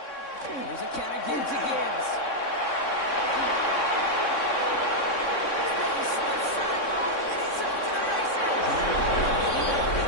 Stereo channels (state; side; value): late; right; 3.6 ms